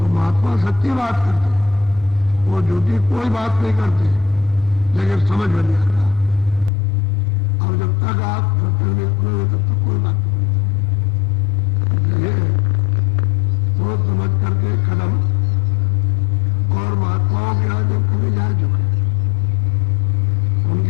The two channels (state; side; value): drops out; right; at 6.7 s